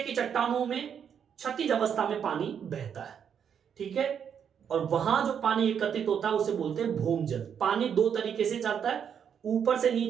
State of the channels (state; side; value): quieter; left; 7.9 dB